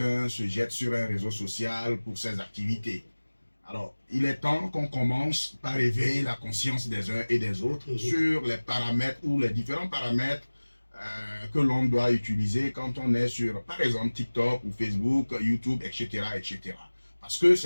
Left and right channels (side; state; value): both; inverted; correlation -1.00